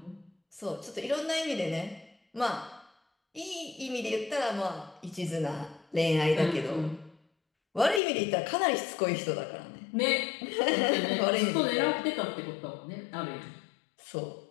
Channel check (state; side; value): drops out; right; at 8.0 s